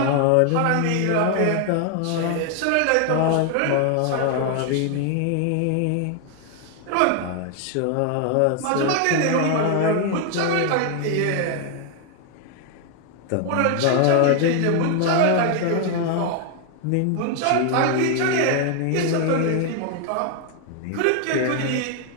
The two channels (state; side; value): different; both; correlation 0.00